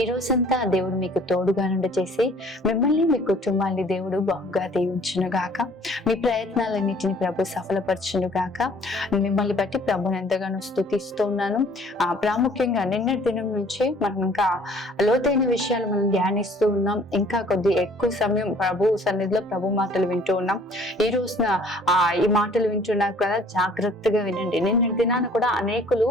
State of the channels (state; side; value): normal; both; correlation 0.55